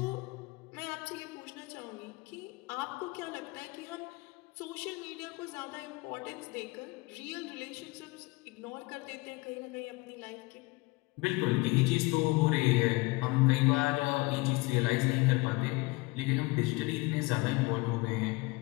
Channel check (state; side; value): quieter; right; 24.2 dB